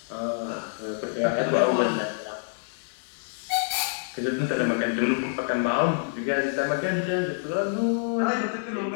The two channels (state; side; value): silent; right; 60 dB below the other